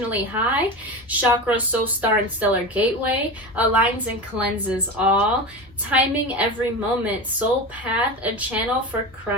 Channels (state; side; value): normal; both; correlation 0.26